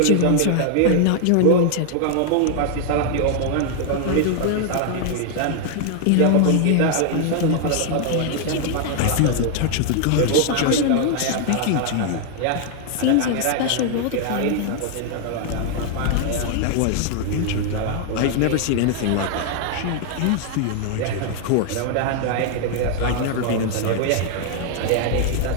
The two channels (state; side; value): different; both; correlation 0.00